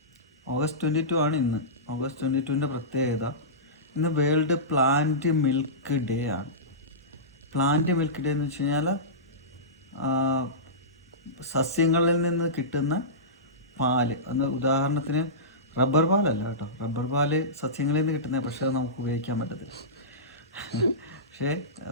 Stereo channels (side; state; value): both; normal; correlation -0.19